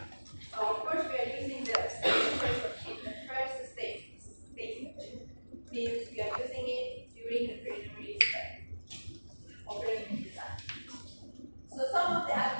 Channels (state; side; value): inverted; both; correlation -1.00